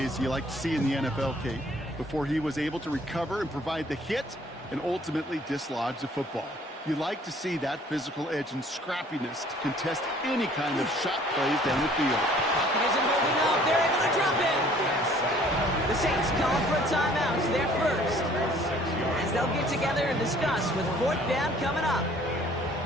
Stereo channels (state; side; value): normal; both; correlation 0.56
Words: you like to see in the NFL, Kate, before he was able to recover and provide the hit and ultimately dislodge the football. You like to see that physical edge and scrappiness to contest any kind of shot plays down the field. Pocket isn't holding up. They're able to drop it. The Saints calling for a timeout. They're first. As they'll get together and discuss with 4th down coming up.